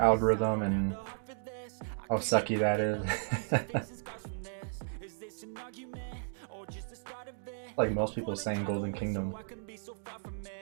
and how sucky that is. Like most people saying Golden Kingdom.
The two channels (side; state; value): left; silent; digital silence